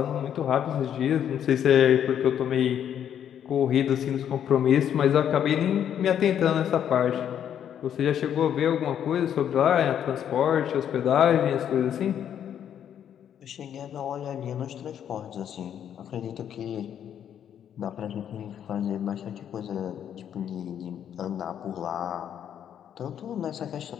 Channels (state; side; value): quieter; right; 9.4 dB